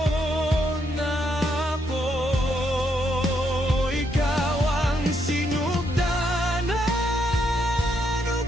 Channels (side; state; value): both; normal; correlation 0.76